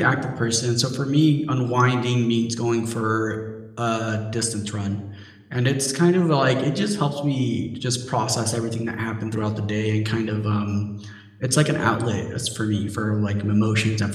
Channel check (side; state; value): both; identical; correlation 1.00